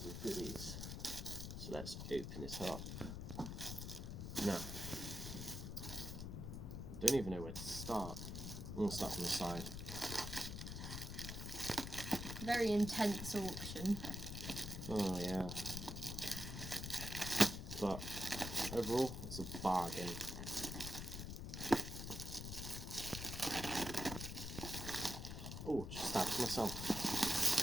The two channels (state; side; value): noise; left; rumble, 6 dB below the sound